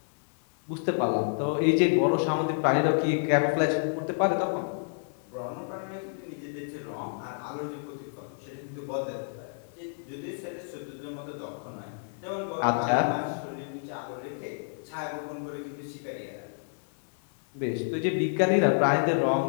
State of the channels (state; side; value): silent; right; 57 dB below the other